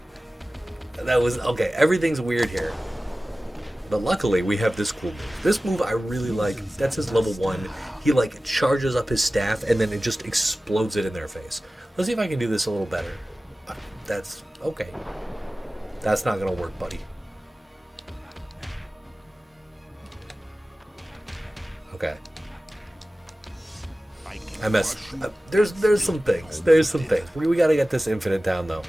That was... Okay, everything's weird here. But luckily, we have this cool move. This move I really like. That's his level 1. He, like, charges up his staff, and then it just explodes it in their face. Let's see if I can do this a little better. That's... Okay. That's not going to work, buddy. Okay. I messed... There's some things. There's some things. We got to get this infinite down, though.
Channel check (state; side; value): normal; both; correlation 0.96